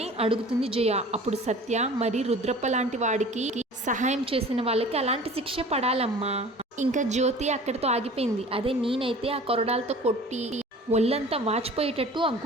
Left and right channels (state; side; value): normal; both; correlation 0.44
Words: అడుగుతుంది జయ. అప్పుడు సత్య, మరి రుద్రప్ప లాంటి వాడికి సహాయం చేసిన వాళ్ళకి అలాంటి శిక్ష పడాలమ్మా. ఇంకా జ్యోతి అక్కడితో ఆగిపోయింది. అదే నేనైతే ఆ కొరడాలతో కొట్టి ఒళ్ళంతా వాచిపోయేటట్టు ఆ